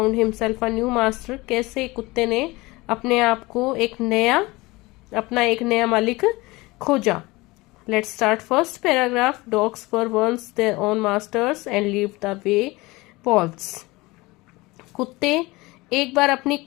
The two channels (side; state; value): right; quieter; 22.0 dB